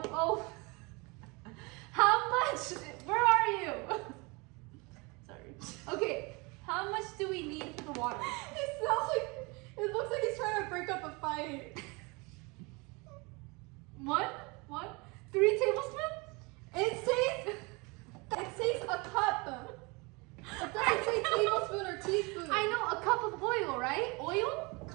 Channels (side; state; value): left; quieter; 27.7 dB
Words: Oh. How much? Where are you? Sorry. Okay. How much do we need for the water? It looks like he's trying to break up a fight. What? 3 tablespoons? It says a cup. It doesn't say tablespoon or teaspoon. I know, a cup of oil, right? Oil?